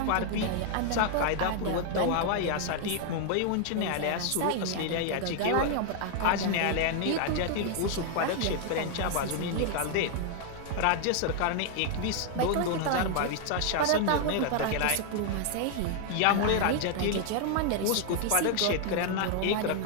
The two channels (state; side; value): different; both; correlation 0.00